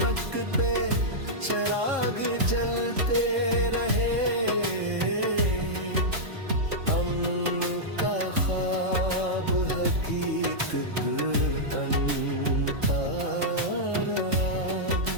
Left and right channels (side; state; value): left; late; 3.7 ms